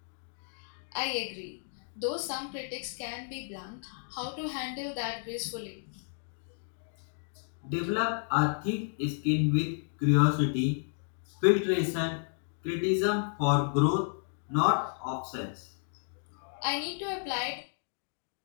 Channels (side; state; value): right; silent; digital silence